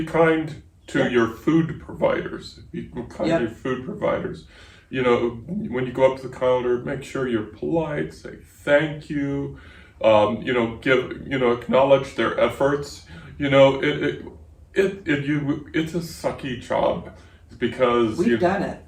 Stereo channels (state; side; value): identical; both; correlation 1.00